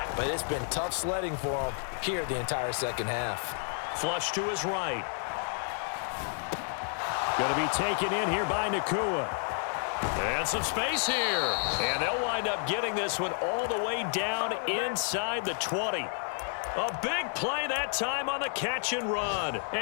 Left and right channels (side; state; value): right; silent; 57 dB below the other